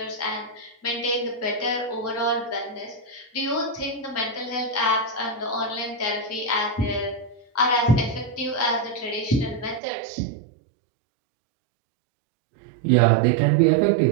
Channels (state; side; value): drops out; left; at 9.8 s